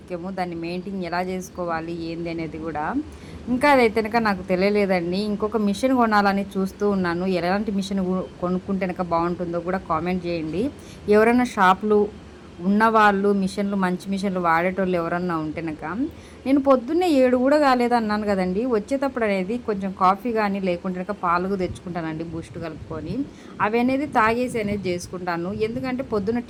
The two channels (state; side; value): identical; both; correlation 1.00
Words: దాన్ని మెయింటైన్ ఎలా చేసుకోవాలి ఏంది అనేది కూడా ఇంకా అదైతే కనుక నాకు తెలియలేదండి. ఇంకొక మిషన్ కొనాలని చూస్తూ ఉన్నాను. ఎలాంటి మిషన్ కొనుక్కుంటే కనుక బాగుంటుందో కూడా కామెంట్ చేయండి. ఎవరైనా షాపులు ఉన్నవాళ్ళు మిషన్లు, మంచి మిషన్లు వాడేటోళ్ళు ఎవరన్నా ఉంటేనక. నేను పొద్దున్నే 7 కూడా కాలేదు అన్నాను కదండి. వచ్చేటప్పుడు అనేది కొంచెం కాఫీ కానీ లేకుంటే పాలు తెచ్చుకుంటానండి బూస్ట్ కలుపుకొని. అవి అనేది తాగేసి అనేది చేసుకుంటాను. ఎందుకంటే పొద్దున్న